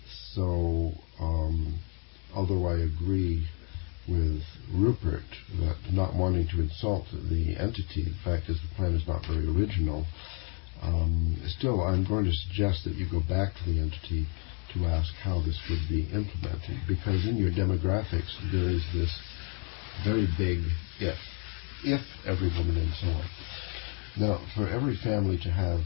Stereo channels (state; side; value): quieter; right; 39.7 dB